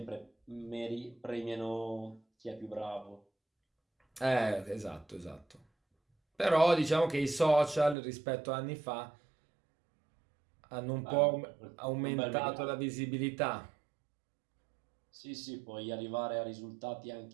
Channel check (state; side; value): drops out; left; at 8.0 s